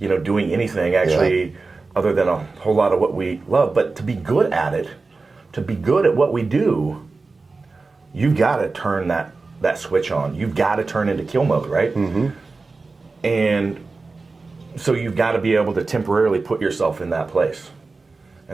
anything actually other than a whole lot of what we love. But to be good at it, to be good at what we do, you've got to turn that switch on. You've got to turn into kill mode, right? And so you've got to be able to temporarily put yourself in that place.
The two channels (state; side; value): quieter; left; 3.9 dB